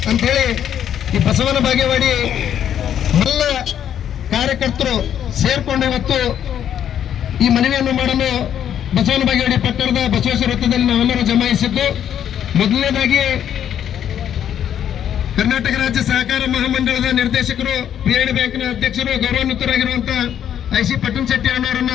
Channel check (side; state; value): right; quieter; 9.7 dB